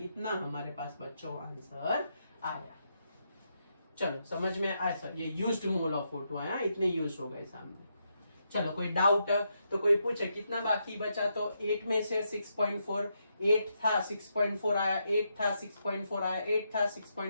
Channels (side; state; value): both; inverted; correlation -0.81